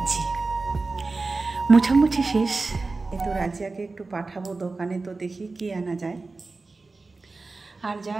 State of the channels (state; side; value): quieter; left; 3.7 dB